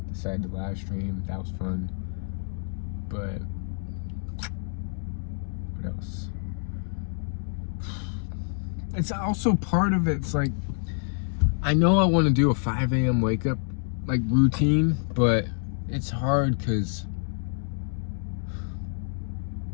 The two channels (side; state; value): right; silent; 58 dB below the other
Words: decided to live stream. That was fun. But what else? It's also part of it. It's like, I know I want to do a 5 a.m. wake up like routine, but it's hard because